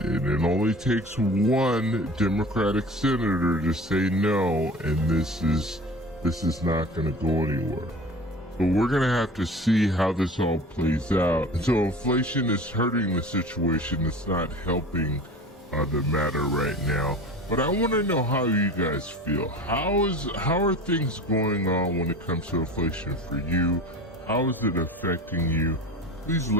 And it only takes one Democratic senator to say no, and this is not going to go anywhere. But we're going to have to see how this all plays out. And so inflation is hurting the situation. It's not helping the matter right now. But I want to know how you guys feel. How are things going on when it comes to inflation for you? How is it affecting you? Please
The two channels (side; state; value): both; normal; correlation 0.38